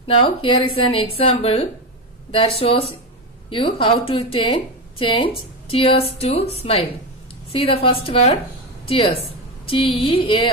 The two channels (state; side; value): normal; both; correlation 0.14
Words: Now, here is an example that shows you how to change tears to smile. See the first word, tears,